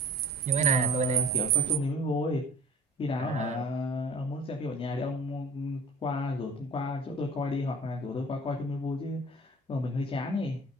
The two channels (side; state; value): both; normal; correlation 0.46